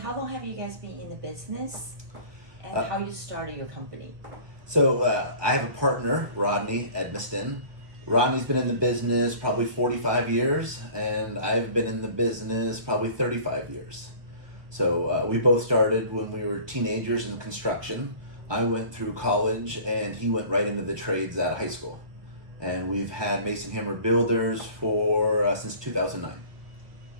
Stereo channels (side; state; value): left; late; 1.4 ms